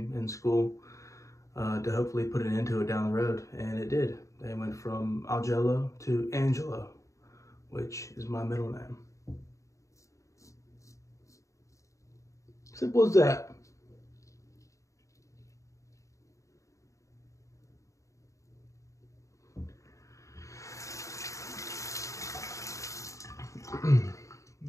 in school to hopefully put an end to it down the road, and it did. They went from Augello to Angelo, which is my middle name. Simple as that.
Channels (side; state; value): right; late; 0.15 ms